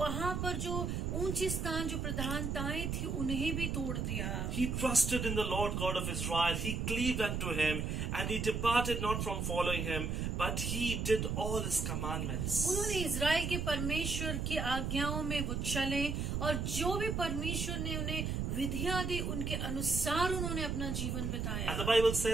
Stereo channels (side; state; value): right; noise; rumble, 1 dB below the sound